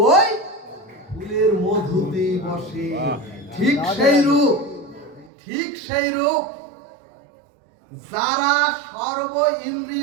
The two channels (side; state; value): left; drops out; at 5.3 s